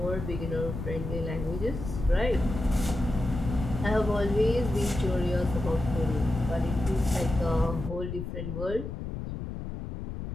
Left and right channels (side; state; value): left; noise; rumble, 6 dB below the sound